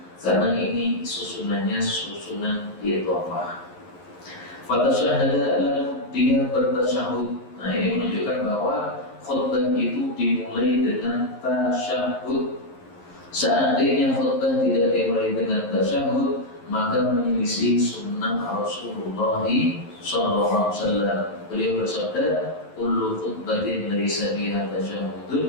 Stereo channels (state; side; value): late; right; 11 ms